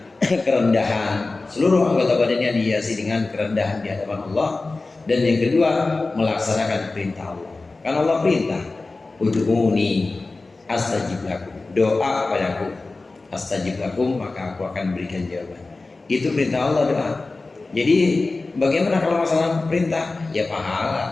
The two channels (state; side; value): quieter; right; 3.5 dB